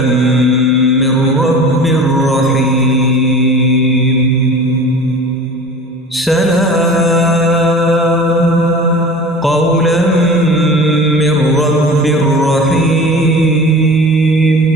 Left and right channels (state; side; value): normal; both; correlation 0.39